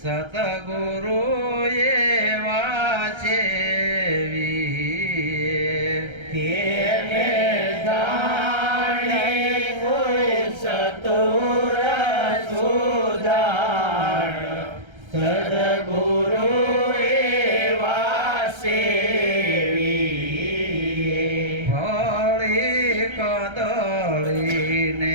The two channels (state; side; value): late; left; 1.3 ms